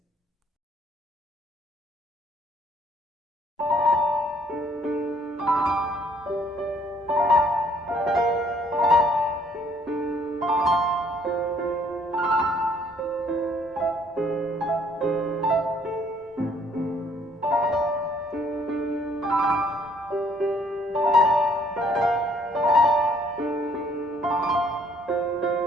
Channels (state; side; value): normal; both; correlation 0.63